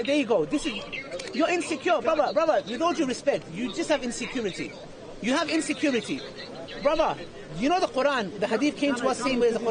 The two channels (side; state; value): both; identical; correlation 1.00